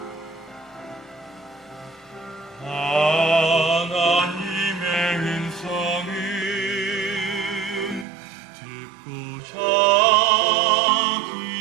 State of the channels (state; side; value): drops out; left; at 8.1 s